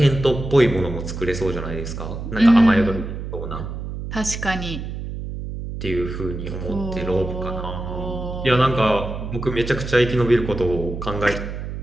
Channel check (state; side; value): noise; right; hum, 7 dB below the sound